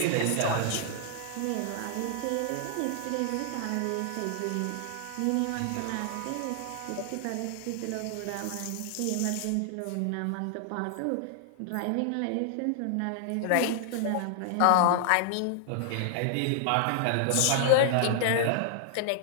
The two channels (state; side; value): different; both; correlation 0.00